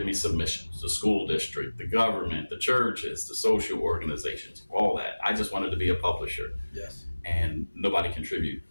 me submissions. The school district, the government, the churches, the social organizations, all that. I just wanted to be a publisher. Yes. And nobody contribute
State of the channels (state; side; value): inverted; both; correlation -1.00